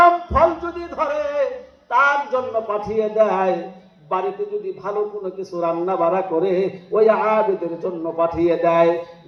ফল যদি ধরে তার জন্য পাঠিয়ে দেয়। বাড়িতে যদি ভালো কোনো কিছু রান্না বাড়া করে ওই আবেদের জন্য পাঠিয়ে দেয়।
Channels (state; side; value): identical; both; correlation 1.00